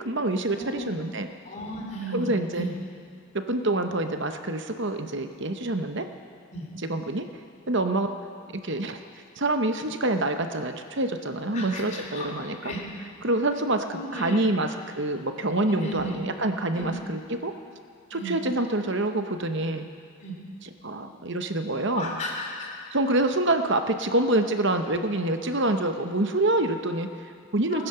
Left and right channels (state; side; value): normal; both; correlation 0.11